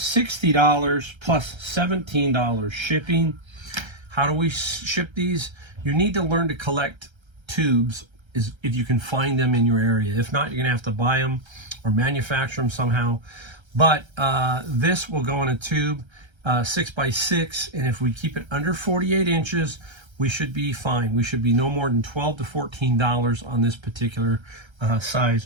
plus $17 shipping. How do we ship these? You need to learn to collect tubes if you can find them in your area. If not, you're going to have to buy them or manufacture them somehow. But this will go in a tube 6x6, and if we keep it under 48 inches, we should be fine. We should be no more than $12 to $14 on this particular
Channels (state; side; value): late; left; 1.3 ms